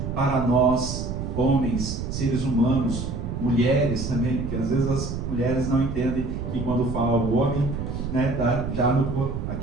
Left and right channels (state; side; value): noise; right; rumble, 4 dB below the sound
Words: para nós, homens, seres humanos, mulheres também, porque às vezes as mulheres não entendem que quando fala o homem, né, tá já